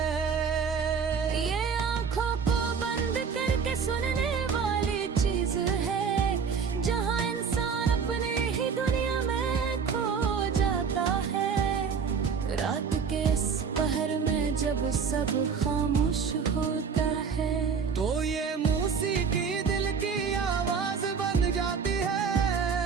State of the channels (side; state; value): left; quieter; 6.1 dB